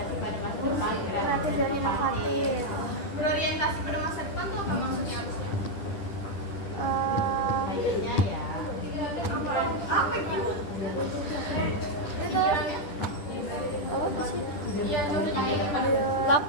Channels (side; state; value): right; late; 10 ms